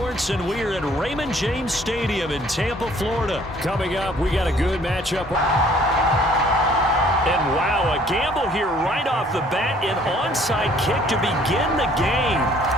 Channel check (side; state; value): both; normal; correlation 0.58